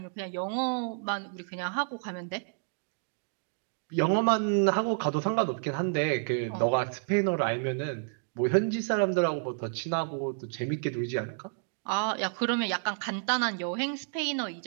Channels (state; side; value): silent; left; digital silence